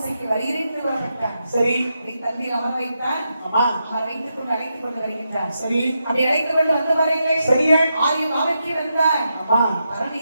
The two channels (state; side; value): inverted; both; correlation -0.85